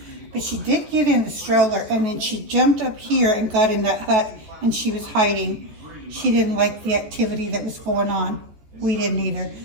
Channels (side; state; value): left; late; 14 ms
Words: But she did get in the stroller, and then she jumped up here and got in that hut, and she was hiding. She didn't like the activity that was going on. We didn't either.